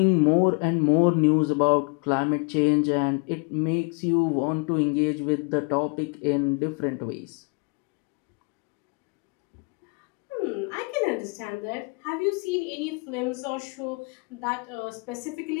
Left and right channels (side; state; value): right; quieter; 33.2 dB